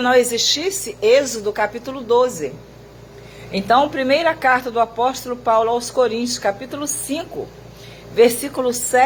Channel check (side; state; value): both; identical; correlation 1.00